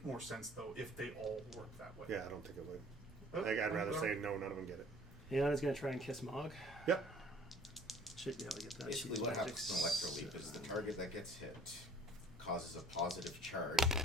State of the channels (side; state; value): both; normal; correlation 0.52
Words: more sense though if they all worked that way. Yeah, I don't think it would. But, I'd rather but- say no, none of them get it. Iana's gonna try and kiss Mulg. Yep. Should be able to get that. Basically, She's what magic happens in Electroleap is the 7. target that gets hit causes a positive charge